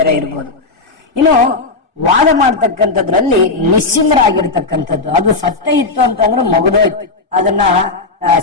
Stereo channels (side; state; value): right; quieter; 3.7 dB